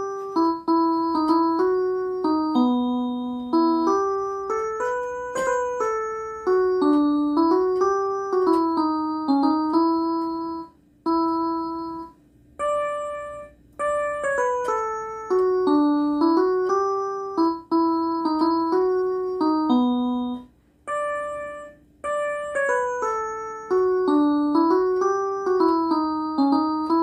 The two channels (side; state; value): both; identical; correlation 1.00